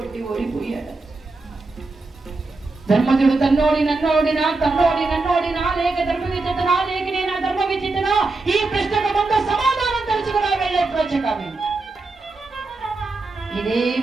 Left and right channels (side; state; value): left; quieter; 3.5 dB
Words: ఓడిపోయాడు. ధర్మజుడు తన్నోడి నన్నోడినా, తన్నోడి నన్నోడినా, లేక ధర్మ విచితనా, లేక నేను ధర్మ విచితనా? ఈ ప్రశ్నకు ముందు సమాధానం తెలుసుకున్నా వెళ్ళే ప్రాచకామి. ఇదే